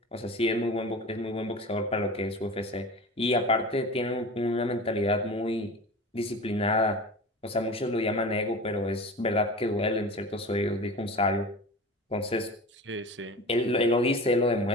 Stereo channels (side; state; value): both; normal; correlation 0.34